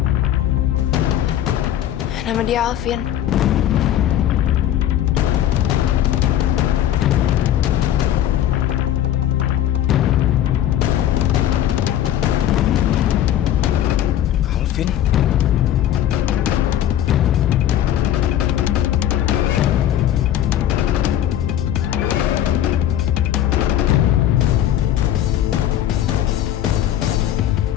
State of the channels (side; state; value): right; quieter; 11.5 dB